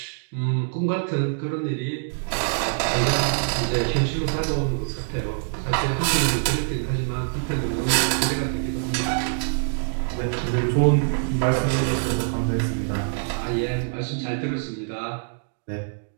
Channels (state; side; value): silent; left; digital silence